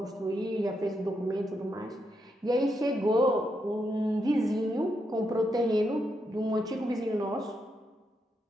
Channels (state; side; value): normal; both; correlation 0.81